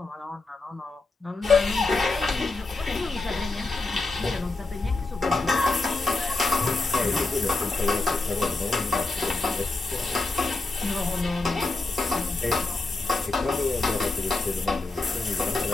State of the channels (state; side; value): quieter; right; 3.5 dB